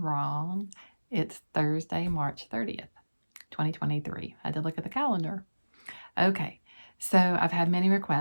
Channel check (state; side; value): inverted; both; correlation -1.00